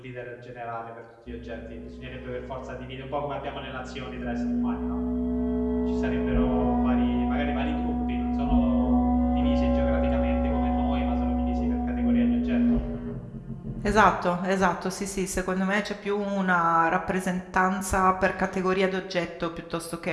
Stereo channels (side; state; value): both; identical; correlation 1.00